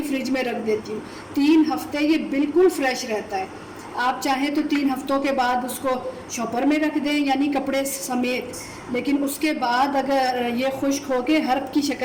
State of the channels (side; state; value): both; identical; correlation 1.00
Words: फ्रिज में रख देती हूँ। 3 हफ्ते ये बिल्कुल फ्रेश रहता है। आप चाहें तो 3 हफ्तों के बाद उसको शॉपर में रख दें, यानी कपड़े समेत, लेकिन उसके बाद अगर ये खुश्क होके हर्ब की